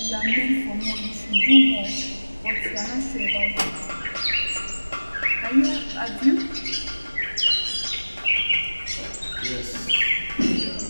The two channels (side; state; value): both; inverted; correlation -1.00